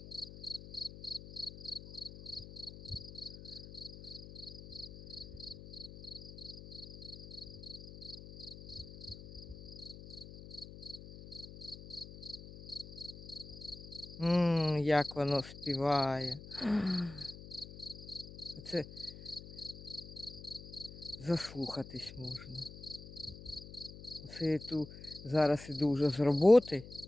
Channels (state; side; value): noise; left; hum, 14 dB below the sound